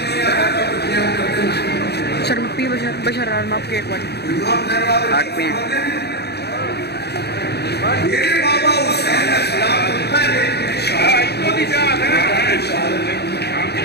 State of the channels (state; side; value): late; right; 0.48 ms